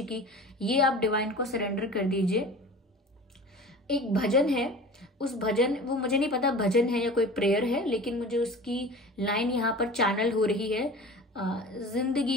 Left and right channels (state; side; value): normal; both; correlation 0.38